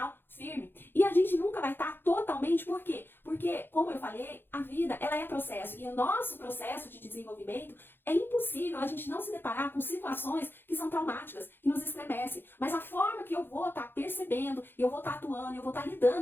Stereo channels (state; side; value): late; right; 0.10 ms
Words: firme. E a gente nunca vai estar totalmente, por quê? Porque, como eu falei, a vida, ela é processo. E o nosso processo de desenvolvimento é impossível a gente não se deparar com situações que são traumáticas, que nos estremecem. Mas a forma que eu vou estar percebendo, e eu vou estar atuando, eu vou estar